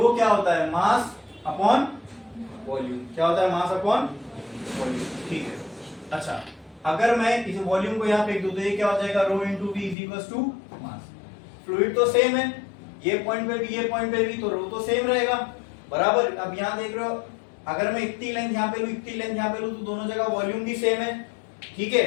क्या होता है? Mass upon volume. क्या होता है? Mass upon volume. ठीक है। अच्छा, अगर मैं इस वॉल्यूम को यहाँ फेंक दूं तो ये क्या हो जाएगा? Rho into V is equal to mass. Fluid तो सेम है, ये पॉइंट पे भी ये पॉइंट पे भी, तो रो तो सेम रहेगा बराबर। अब यहाँ देख रहे हो, अगर मैं इतनी लेंथ यहाँ पे लूं, इतनी लेंथ यहाँ पे लूं, तो दोनों जगह वॉल्यूम भी सेम है। ठीक है,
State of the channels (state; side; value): drops out; right; at 10.0 s